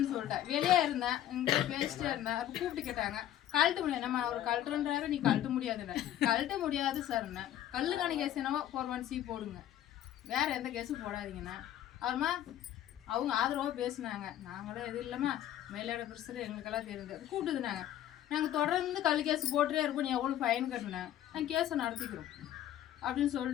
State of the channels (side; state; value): right; quieter; 11.9 dB